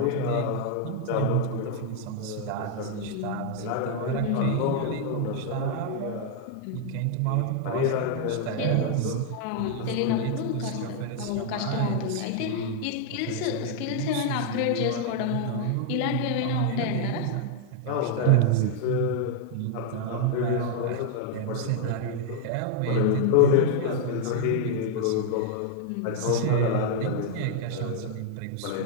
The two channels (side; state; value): both; different; correlation 0.00